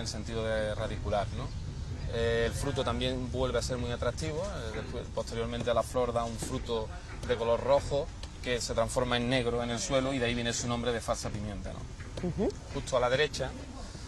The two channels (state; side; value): identical; both; correlation 1.00